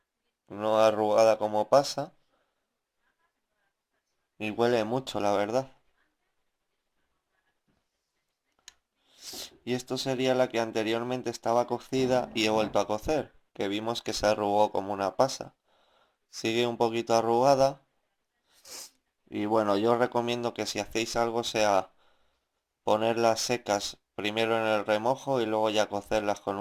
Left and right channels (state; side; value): identical; both; correlation 1.00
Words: no arrugada como pasa. Y huele mucho, la verdad. Y esto sería la que anteriormente estaba cocida y he vuelto a cocer, que vimos que se arrugó como una pasa. Sigue un poquito arrugada. Y bueno, yo os recomiendo que si hacéis algo sea ponerlas secas primero en el remojo y luego ya cocerlas con